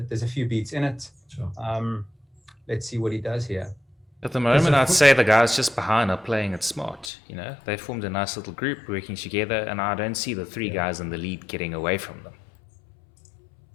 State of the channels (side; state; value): right; drops out; at 7.1 s